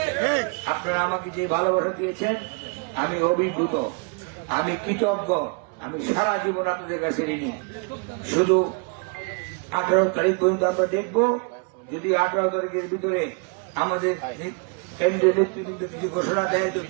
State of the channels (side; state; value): left; quieter; 35.0 dB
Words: আপনারা আমাকে যে ভালোবাসা দিয়েছেন আমি অভিভূত, আমি কৃতজ্ঞ, আমি সারা জীবন আপনাদের কাছে ঋণী। শুধু 18 তারিখ পর্যন্ত আমরা দেখব, যদি 18 তারিখের ভিতরে আমাদের কেন্দ্রীয় নেতৃবৃন্দ কিছু ঘোষণা দেয় তো